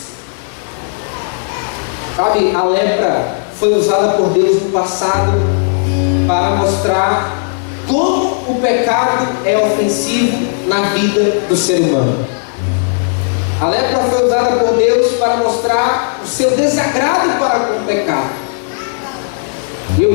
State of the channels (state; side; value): silent; right; digital silence